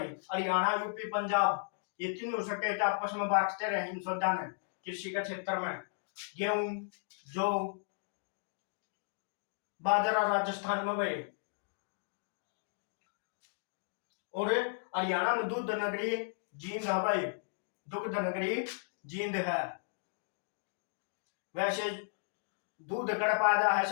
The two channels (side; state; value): right; silent; digital silence